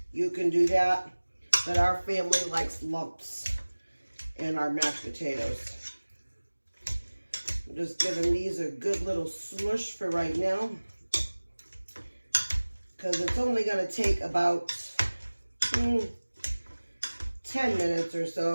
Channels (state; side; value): inverted; both; correlation -1.00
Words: you can do that. But our family likes lumps in our mashed potatoes. I'm just giving these a good little smush for right now, because it's only going to take about 10 minutes or